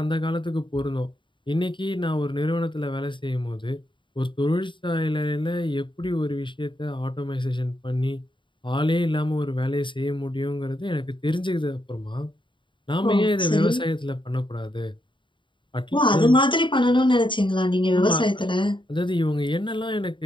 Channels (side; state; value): right; late; 0.23 ms